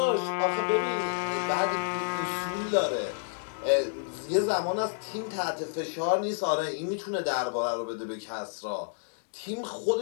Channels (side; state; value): right; silent; digital silence